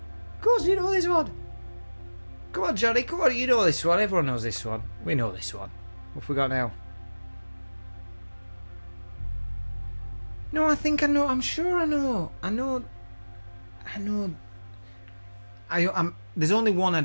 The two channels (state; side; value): inverted; both; correlation -1.00